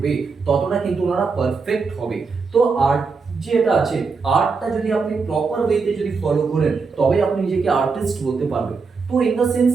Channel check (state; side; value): quieter; left; 4.8 dB